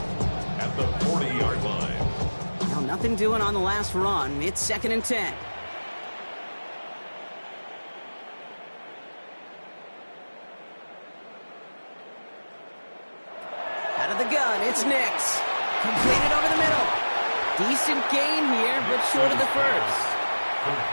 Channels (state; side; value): inverted; both; correlation -1.00